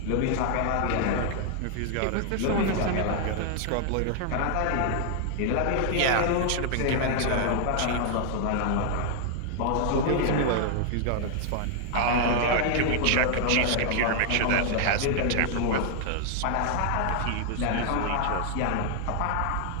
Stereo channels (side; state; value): both; different; correlation 0.00